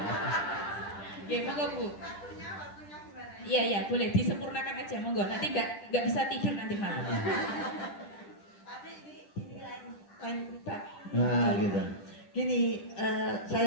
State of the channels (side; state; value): right; late; 10 ms